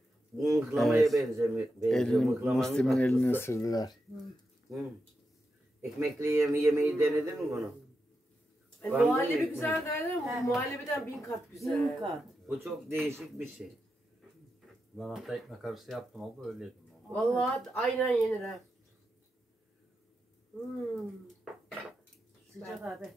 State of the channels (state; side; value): normal; both; correlation 0.87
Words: Bu mıhlamaya Evet. benziyor. Musti'min elini ısırdılar. Hı. Ekmekli yemeği denedin mi bunu? Var mı Muhallebi ekmek? güzel derler ama bu muhallebiden 1000 kat güzel. Bin kat. Bu çok değişik bir şey. Ben hatta ekmek arası yaptım oldu öyle yedim. Vallahi aynen yenir ha. Sıcak abi.